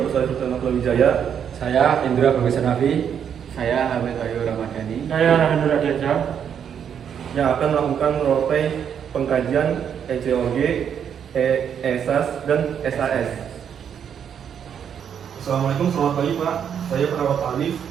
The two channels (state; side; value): quieter; left; 8.2 dB